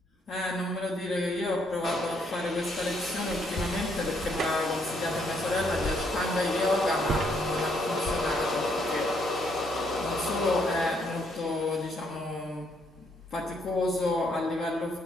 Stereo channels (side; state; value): both; normal; correlation 0.71